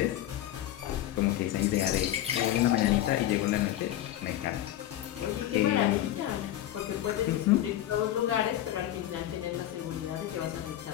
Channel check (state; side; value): quieter; right; 13.0 dB